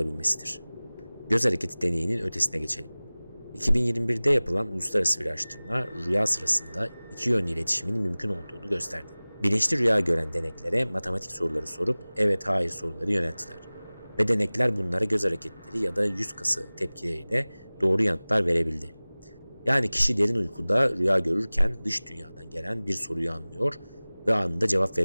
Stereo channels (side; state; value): both; inverted; correlation -0.99